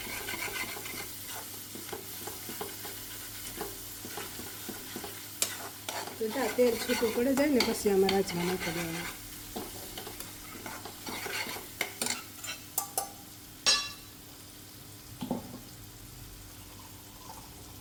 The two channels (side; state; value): both; identical; correlation 1.00